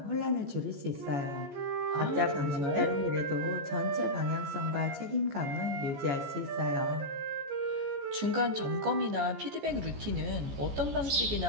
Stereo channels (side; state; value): left; late; 14 ms